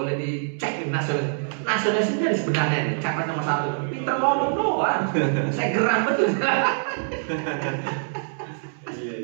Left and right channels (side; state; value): left; silent; 62 dB below the other